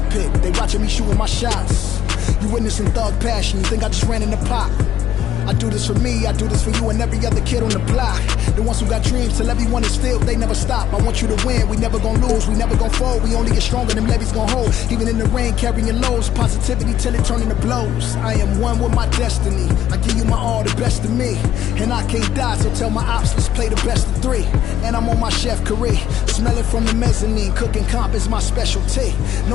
pick, they watching me shooting my shots. You witnessing thug passion, you think I just ran in the pot. I do this for me, I do this for you and every other kid on the block. The ones who got dreams, till everyone is filled, they never stop. I want you to win, we never gonna lose, we never gonna fold. We only get stronger, them levees gonna hold. Even in the rain, carrying lows, positivity till it turn into blows. I am one with my destiny, I give you my all, the best of me. And I can't die, so tell my ops, let's play the best of 3. And I'm on my chef career, smelling from the mezzanine. Cooking comp is my specialty,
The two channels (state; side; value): quieter; right; 10.8 dB